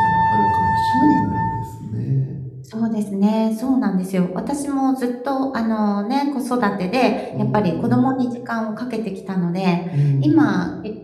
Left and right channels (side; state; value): both; identical; correlation 1.00